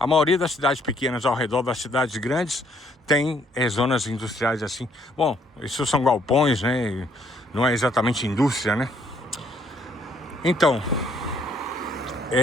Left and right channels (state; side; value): normal; both; correlation 0.66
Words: maioria das cidades pequenas ao redor das cidades grandes tem zonas industriais assim. Bom, isso são galpões, né? Não é exatamente indústria, né? Então,